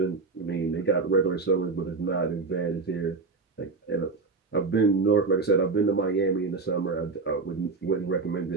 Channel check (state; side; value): quieter; left; 4.3 dB